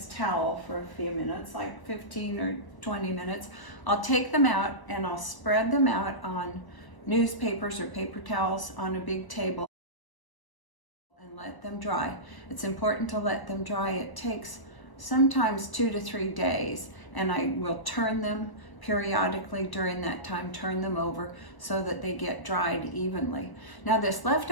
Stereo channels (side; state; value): right; late; 1.0 ms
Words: towel for a few minutes, like 15 or 20 minutes, I'll take them out and I'll spread them out on newspapers or paper towels on a big table and let them dry. It's important to let them dry. It takes sometimes 2 to 3 days, and I will turn them periodically during that time, turn them over so that they get dried evenly. Now this